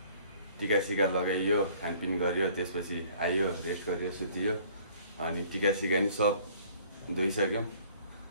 टिका सिका लगाइयो खानपिन गरियो त्यसपछि आइयो रेस्ट गरियो सुतियो अनि टिका सिका नि सब धोइसक्यौँ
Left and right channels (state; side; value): inverted; both; correlation -0.56